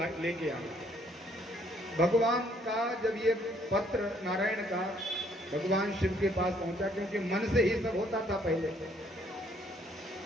लेके आओ। भगवान का जब ये पत्र नारायण का भगवान शिव के पास पहुंचा, क्योंकि मन से ही सब होता था पहले,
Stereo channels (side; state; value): both; normal; correlation 0.65